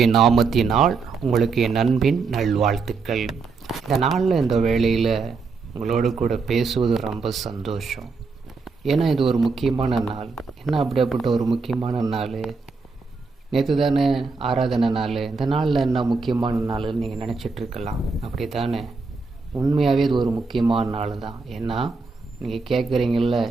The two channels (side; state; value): left; quieter; 4.4 dB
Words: நாமத்தினால் உங்களுக்கு என் அன்பின் நல்வாழ்த்துக்கள். இந்த நாளில் இந்த வேளையில் உங்களோடு கூட பேசுவது ரொம்ப சந்தோஷம். ஏன்னா இது ஒரு முக்கியமான நாள். என்ன அப்படிப்பட்ட ஒரு முக்கியமான நாள்? நேற்று தானே ஆராதனை நாள். இந்த நாளில் என்ன முக்கியமான நாள்னு நீங்கள் நினச்சிட்ருக்கலாம். அப்படி தானே? உண்மையாகவே இது ஒரு முக்கியமான நாள் தான். ஏன்னா நீங்கள் கேட்குறீங்கள,